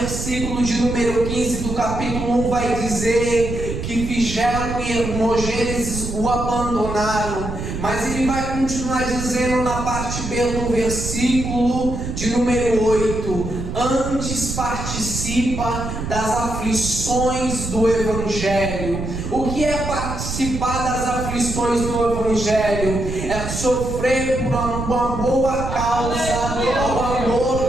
de número 15 do capítulo 1 vai dizer que Figelo e Hermógenes o abandonaram, mas ele vai continuar dizendo na parte B do versículo de número 8: antes participa das aflições do Evangelho. O que é participar das aflições do Evangelho? É sofrer por uma boa causa, ao amor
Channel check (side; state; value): right; noise; rumble, 5 dB below the sound